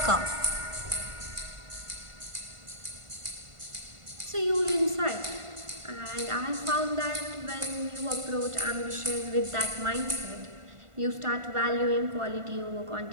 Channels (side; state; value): left; late; 1.5 ms